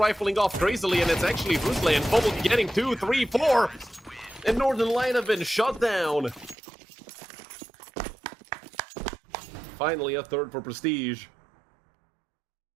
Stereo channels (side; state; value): left; drops out; at 6.6 s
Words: off crazily. And it's actually Brusley and Fold getting 2, 3, 4. And Northern Light have been shut down. Finally, a third for Prestige.